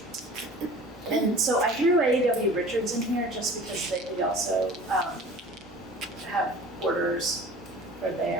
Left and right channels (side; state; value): both; normal; correlation 0.42